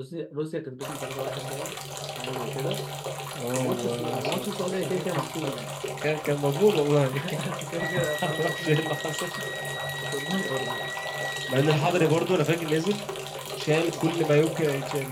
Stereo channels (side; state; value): both; identical; correlation 1.00